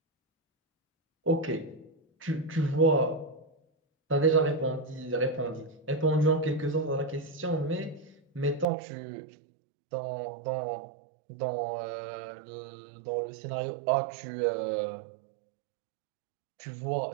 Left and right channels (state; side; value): drops out; left; at 8.7 s